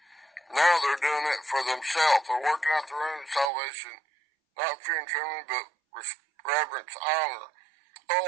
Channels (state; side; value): drops out; left; at 3.5 s